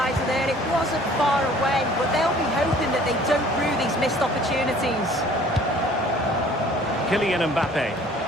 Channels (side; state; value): both; normal; correlation 0.53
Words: there. It wasn't far away, but they'll be hoping that they don't rue these missed opportunities. Kylian Mbappe.